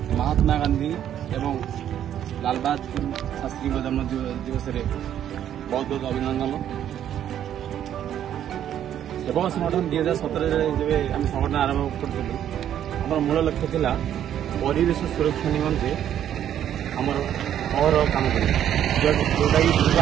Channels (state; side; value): quieter; left; 10.4 dB